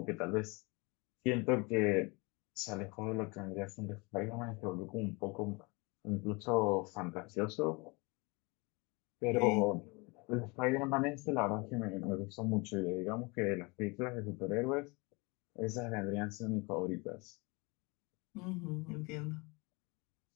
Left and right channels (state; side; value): quieter; right; 27.7 dB